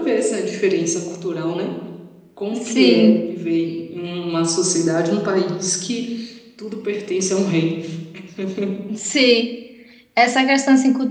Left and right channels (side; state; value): both; identical; correlation 1.00